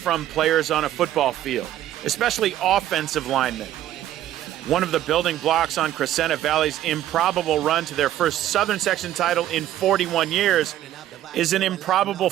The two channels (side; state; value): left; quieter; 12.7 dB